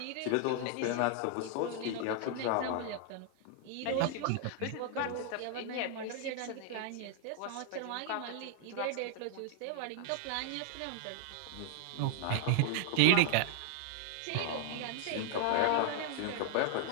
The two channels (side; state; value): both; different; correlation -0.01